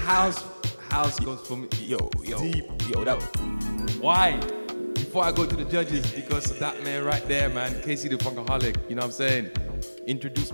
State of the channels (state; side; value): inverted; both; correlation -1.00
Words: house goes for me. Deep. Why? Before I go to the judges, because of that man right there, man, KC the Funkaholic, you know what I'm saying?